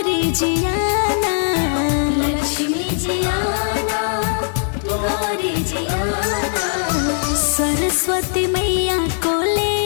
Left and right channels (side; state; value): right; silent; 63 dB below the other